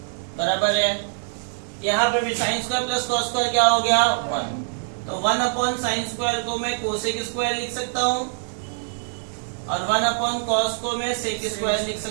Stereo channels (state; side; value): silent; left; 60 dB below the other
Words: बराबर है. यहाँ पे भी sine square plus cos square क्या हो गया 1, तो 1 अपॉन साइन स्क्वायर को मैं कोसेक स्क्वायर लिख सकता हूँ और 1 अपॉन कॉस को मैं सेक स्क्वायर लिख